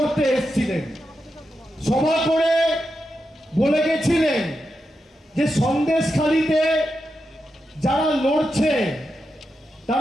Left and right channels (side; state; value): both; normal; correlation 0.87